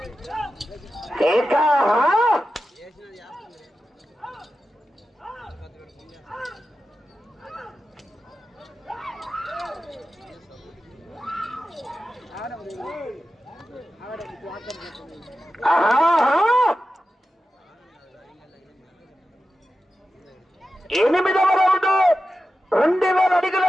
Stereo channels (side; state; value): both; normal; correlation 0.92